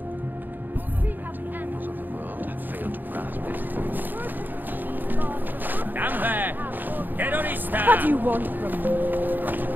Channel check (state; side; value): late; left; 0.090 ms